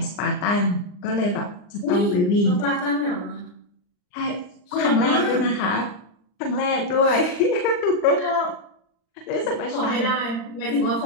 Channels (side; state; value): right; late; 39 ms